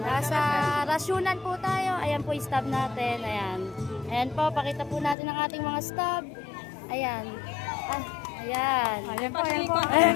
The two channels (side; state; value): right; drops out; at 5.2 s